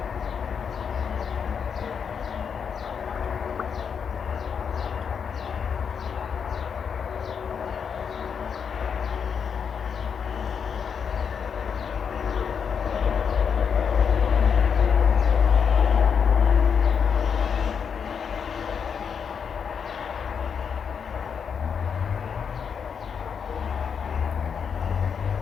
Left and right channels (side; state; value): right; quieter; 6.8 dB